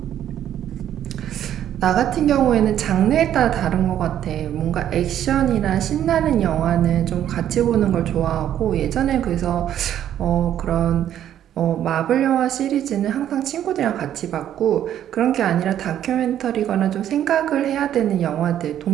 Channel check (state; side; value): quieter; left; 10.8 dB